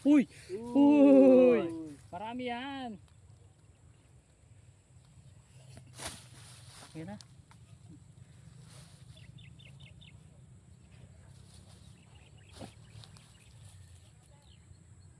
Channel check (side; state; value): both; identical; correlation 1.00